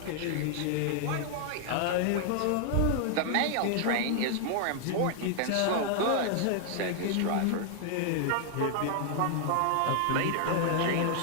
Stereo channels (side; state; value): both; different; correlation 0.00